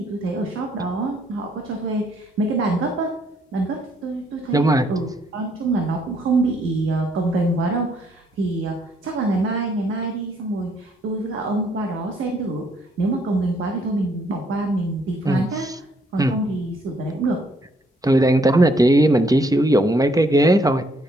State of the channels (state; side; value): normal; both; correlation 0.69